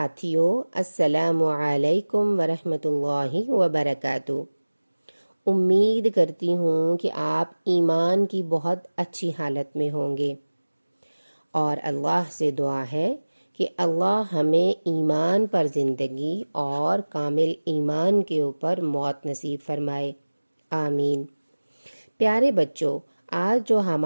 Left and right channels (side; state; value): both; inverted; correlation -1.00